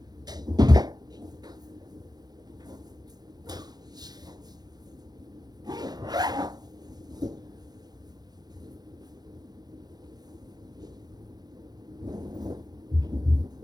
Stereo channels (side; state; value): left; late; 0.19 ms